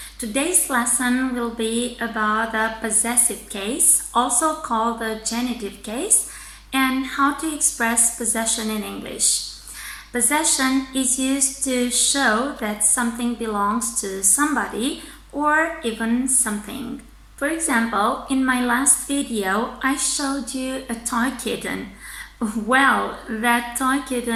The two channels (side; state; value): both; identical; correlation 1.00